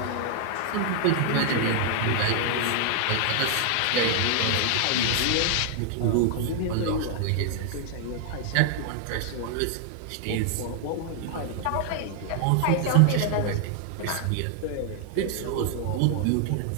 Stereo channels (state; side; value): different; both; correlation 0.00